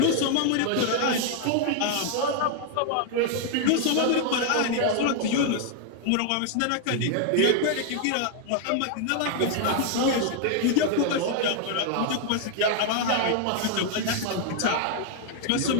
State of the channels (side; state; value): both; different; correlation 0.00